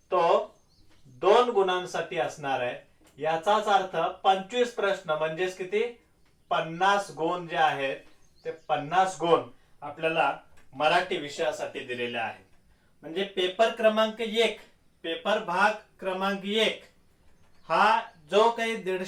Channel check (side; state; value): both; identical; correlation 1.00